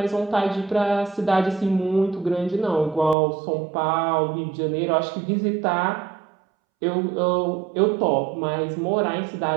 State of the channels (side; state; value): left; drops out; at 3.2 s